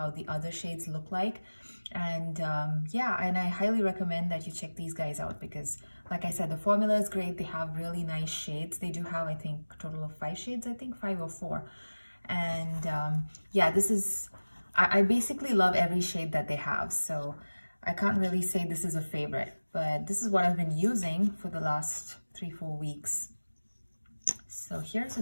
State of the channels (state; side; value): inverted; both; correlation -1.00